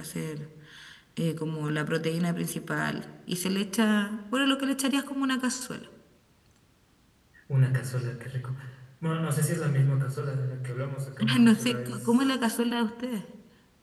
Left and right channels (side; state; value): both; identical; correlation 1.00